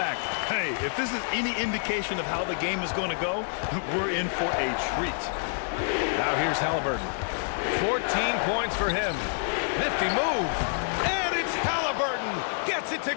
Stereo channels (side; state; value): right; silent; 60 dB below the other